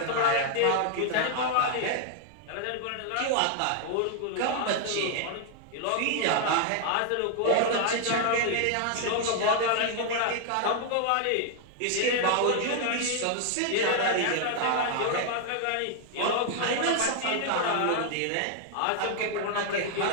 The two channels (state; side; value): different; both; correlation 0.00